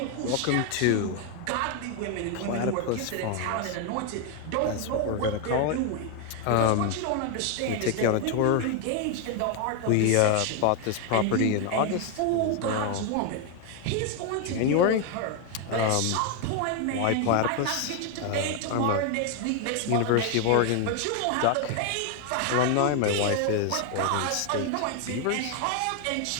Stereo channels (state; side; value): different; both; correlation 0.01